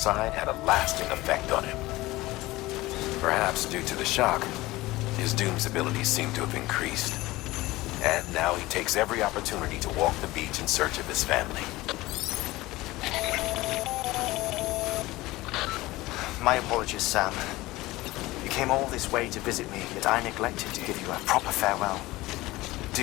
had a lasting effect on him. Perhaps due to the shock, his Doom's abilities seem to have increased. And now he takes every opportunity to walk the beach in search of his family. My apologies, Sam. You came all this way to visit me, yet I neglected to give you a proper farewell.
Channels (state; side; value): quieter; right; 19.1 dB